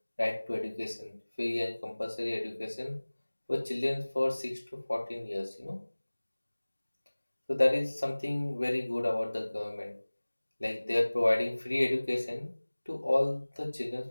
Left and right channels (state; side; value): inverted; both; correlation -1.00